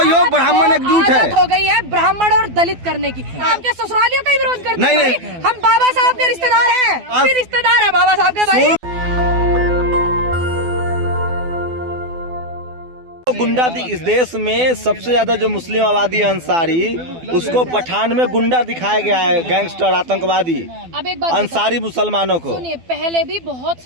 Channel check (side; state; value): left; late; 12 ms